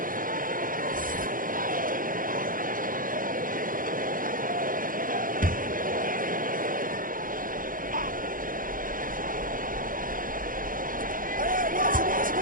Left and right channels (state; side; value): late; left; 0.40 ms